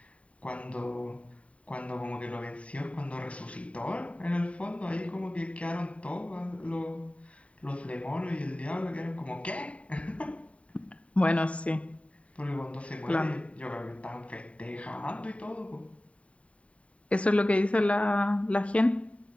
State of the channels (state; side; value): late; right; 0.065 ms